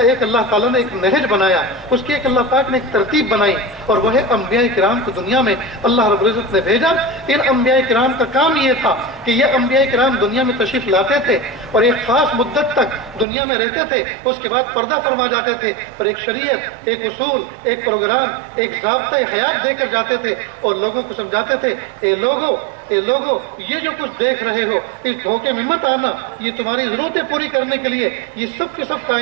ایک اللہ تعالیٰ نے ایک نہج بنایا، اس کی ایک اللہ پاک نے ایک ترتیب بنائی، اور وہ ہے انبیاء کرام کو دنیا میں اللہ رب العزت نے بھیجا. ان انبیاء کرام کا کام یہ تھا کہ یہ انبیاء کرام دنیا میں تشریف لاتے تھے اور ایک خاص مدت تک دنیا میں رہتے تھے، اس کے بعد پردہ فرما جاتے تھے اور ایک شریعت، ایک اصول، ایک پروگرام، ایک ضابطۂ حیات دے کر جاتے تھے اور لوگوں کو سمجھاتے تھے اے لوگو یہ جو کچھ دیکھ رہے ہو اس دھوکے میں مت آنا. یہ تمہاری ضرورتیں پوری کرنے کے لیے، یہ سب کے سب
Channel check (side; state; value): left; drops out; at 13.2 s